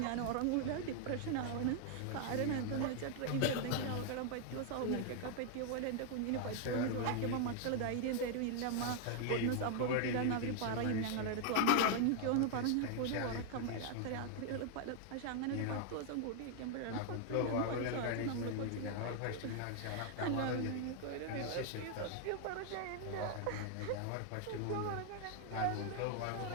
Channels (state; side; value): different; both; correlation 0.00